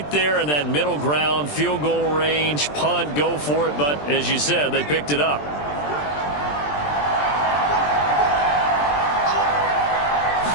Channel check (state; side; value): late; right; 20 ms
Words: there in that middle ground, field goal range, punt, go for it. But as you said, they picked it up.